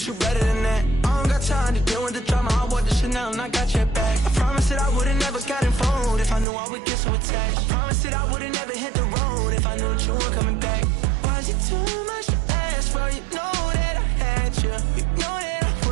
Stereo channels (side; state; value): left; drops out; at 6.5 s